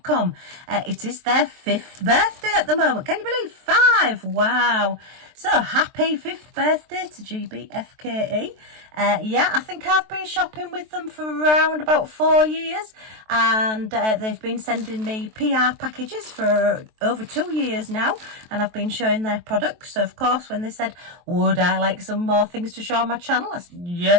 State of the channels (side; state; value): left; late; 23 ms